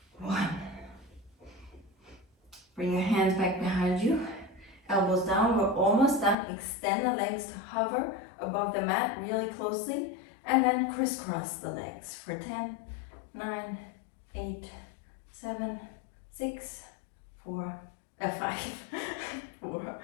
1. Bring your hands back behind you. elbows down. We're almost done. Extend the legs to hover above the mat really closely, and then crisscross the legs for 10, 9, 8, 7, 6, 4, 5, 4,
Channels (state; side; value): drops out; right; at 6.4 s